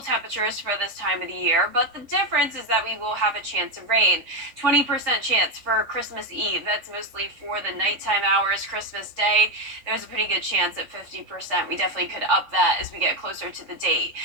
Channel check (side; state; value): left; late; 3.6 ms